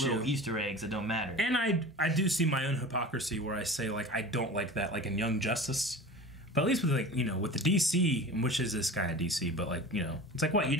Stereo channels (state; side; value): normal; both; correlation 0.36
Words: little Easter eggs that don't matter. And I do see my own hypocrisy where I say, like, I don't like that, like in Young Justice. But at least with, like, with the DC, which is this kind of DC, but, like, it's like, what, you